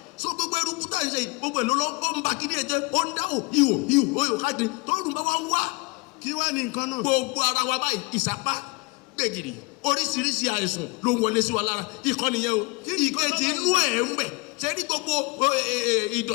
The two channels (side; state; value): right; quieter; 27.8 dB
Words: so gbogbo eruku tá à ń ṣe yìí gbogbo ẹ̀ ló lọ́ ó ń ba kíní ẹ̀ jẹ́ ó ń dáhùn ihò káàkiri tó rùn bá wá wá kí wá ní nǹkan náà. gbogbo ara wa báyìí ìsapá gbègìrì oríṣiríṣi àìsàn ló ń wọlé sí wa lára ìkànnì yẹn o ìkejì inú ẹ̀ ń bẹ̀ ṣe ní gbogbo